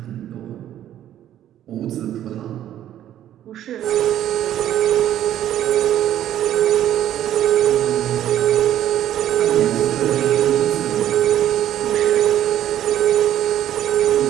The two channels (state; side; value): quieter; left; 11.7 dB